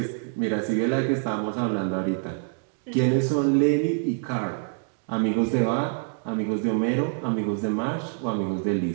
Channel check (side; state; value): left; silent; 61 dB below the other